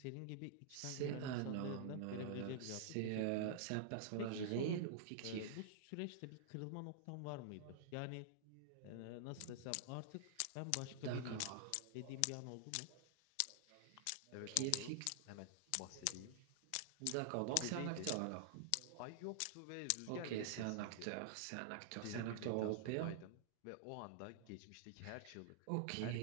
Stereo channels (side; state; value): both; different; correlation -0.01